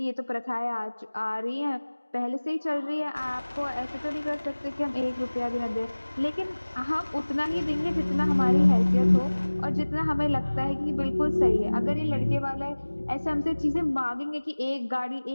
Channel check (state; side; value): inverted; both; correlation -1.00